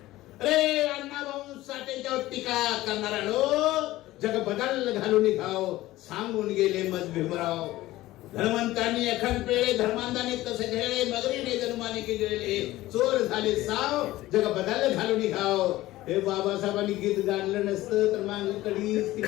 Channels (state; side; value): quieter; right; 16.8 dB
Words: अरे अण्णाभाऊ साठेंच्यावर टीका करणारा जग बदल घालून घाव सांगून गेले मत भीमराव. धर्मंतांनी एखाद पेळे धर्मांतांनी तसे घेळे, मगरीने धर्माने केले चोर झाले साव, जग बदल घालून घाव. हे बाबासाहेबांनी गीत गाणलं नसतं तर माग कडीच